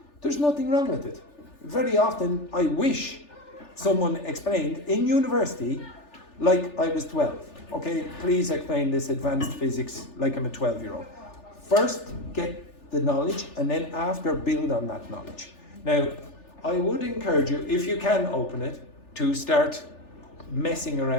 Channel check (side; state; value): right; late; 3.4 ms